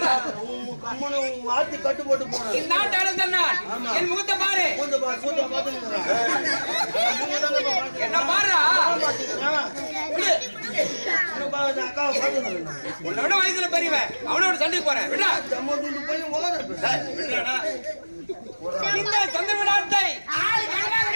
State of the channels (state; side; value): inverted; both; correlation -1.00